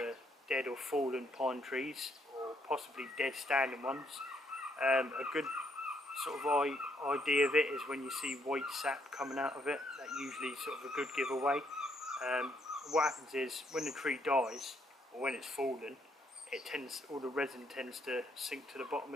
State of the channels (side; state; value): both; normal; correlation 0.72